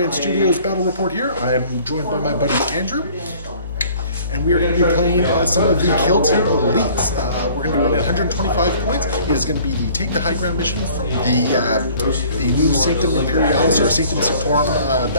Studios battle report here. I am joined by my buddy Andrew, and we are going to be playing some of the Killteam elites. We're going to be running 125 points. It is going to be the Take the High Ground mission from the new Sanctum Imperialis or Sanctum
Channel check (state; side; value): inverted; both; correlation -0.52